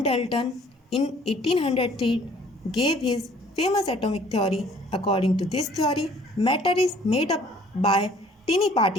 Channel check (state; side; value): normal; both; correlation 0.56